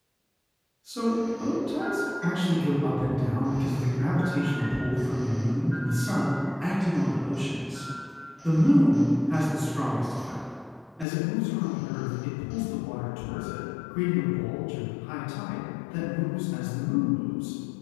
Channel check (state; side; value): drops out; right; at 11.1 s